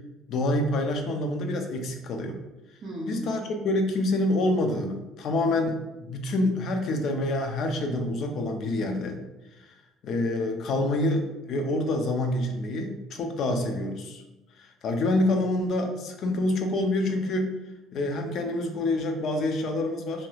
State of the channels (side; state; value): both; normal; correlation 0.58